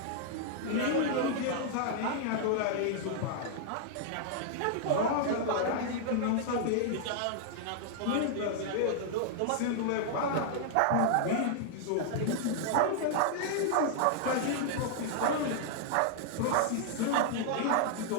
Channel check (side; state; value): both; different; correlation -0.01